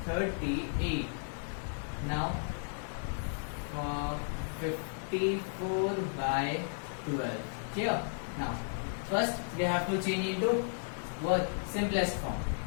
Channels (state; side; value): silent; right; digital silence